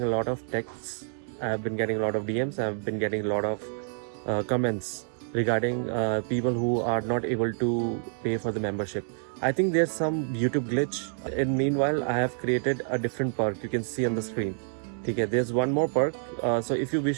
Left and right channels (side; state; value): left; silent; digital silence